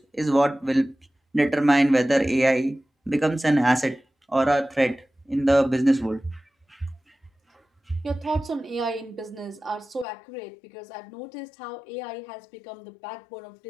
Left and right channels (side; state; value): right; drops out; at 10.1 s